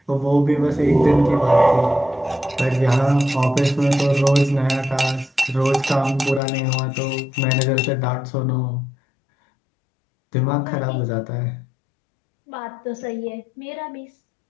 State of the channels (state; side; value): drops out; right; at 6.4 s